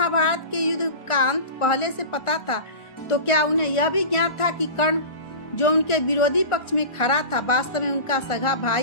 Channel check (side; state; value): right; late; 1.4 ms